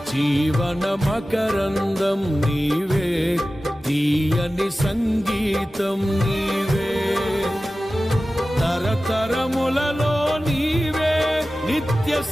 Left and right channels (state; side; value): normal; both; correlation 0.95